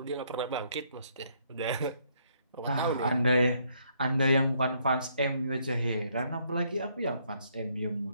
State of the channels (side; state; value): both; inverted; correlation -0.70